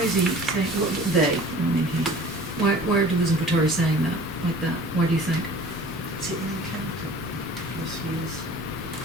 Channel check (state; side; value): normal; both; correlation 0.45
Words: is he saying, they, I mean he, why are Deleuze and Guattari saying that, like that? Why do you think? Is it an encounter? Philosophy is.